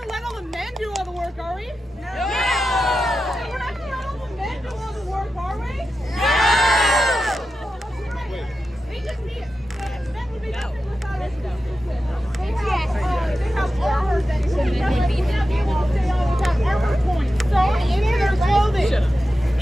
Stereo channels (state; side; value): normal; both; correlation 0.91